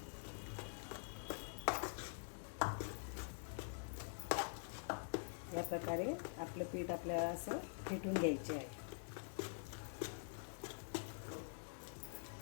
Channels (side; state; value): right; silent; digital silence